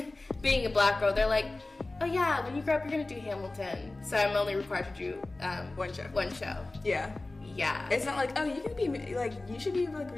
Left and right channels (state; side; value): quieter; right; 3.0 dB